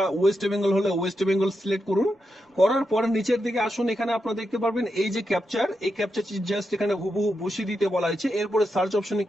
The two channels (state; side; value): normal; both; correlation 0.86